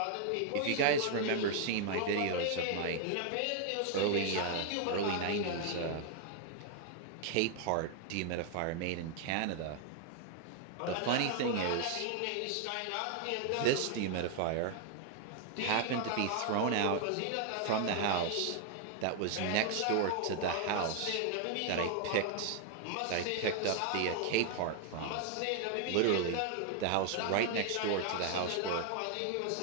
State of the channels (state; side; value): different; both; correlation 0.00